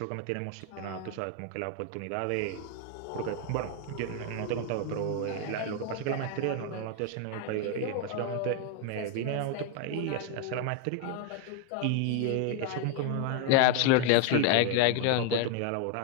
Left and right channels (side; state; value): both; different; correlation 0.01